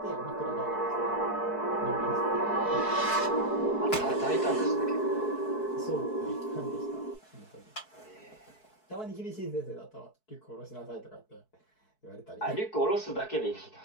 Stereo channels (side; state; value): right; late; 4.6 ms